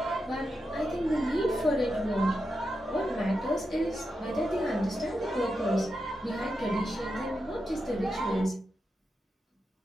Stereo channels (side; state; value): both; normal; correlation 0.87